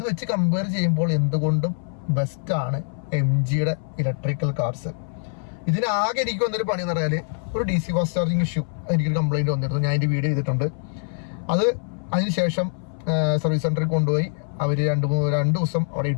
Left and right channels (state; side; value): silent; right; 60 dB below the other